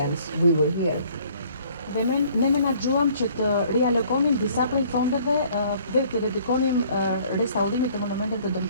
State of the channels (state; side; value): inverted; both; correlation -0.57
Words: We were here. Dhe ne menaxhuam që të rialokonim disa prej fondeve dhe të dedikonim restaurimit të monumenteve të